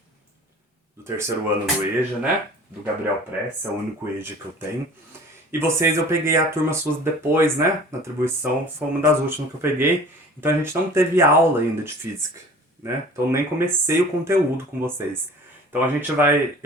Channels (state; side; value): normal; both; correlation 0.45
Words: do terceiro ano do EJA, né? Do Gabriel Press, é o único EJA que eu tenho. E vocês, eu peguei a turma suas depois, né? Na atribuição, foi uma das últimas que eu peguei. Então a gente não teve aula ainda de física, né? Então nem comecei o conteúdo com vocês. Então a gente vai...